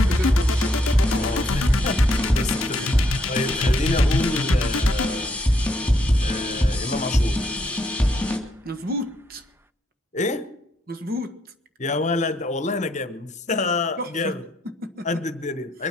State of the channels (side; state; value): both; normal; correlation 0.74